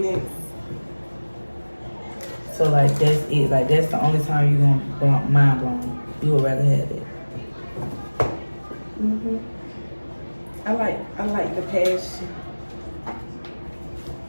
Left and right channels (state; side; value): inverted; both; correlation -1.00